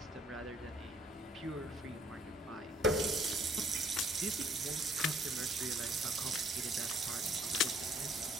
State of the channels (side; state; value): both; normal; correlation 0.62